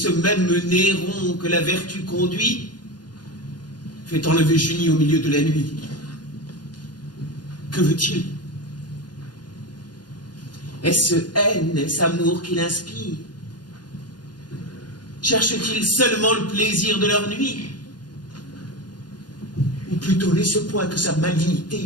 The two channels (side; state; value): right; late; 0.70 ms